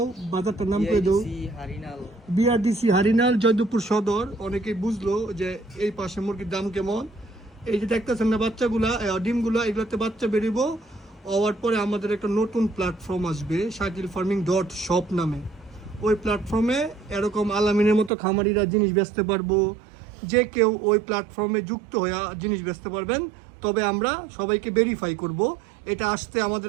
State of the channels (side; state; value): left; drops out; at 18.1 s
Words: বাজারটার নাম করে দাও। হারিনাল। বিআরডিসি হারিনাল, জয়দেবপুর সদর। অনেকেই বুঝলো যে এই পাশে মুরগির দাম কেমন। এই যে দেখতেছেন না বাচ্চাগুলা, ডিমগুলো, এগুলোতে বাচ্চা বেরিয়েবো। হওয়ার পরে আমাদের একটা নতুন প্ল্যাটফর্ম আসবে, shakilfarming.shop নামে। ওই প্ল্যাটফর্মে এরকম আলামিনের মতো খামারিরা জিনিস বেচতে পারবো। যে কেউ ওই প্ল্যাটফর্মে যুক্ত হয়ে জিনিস বেচতে পারবেন। তবে আমরা সবাইকে ভেরিফাই করব। এটা আসতে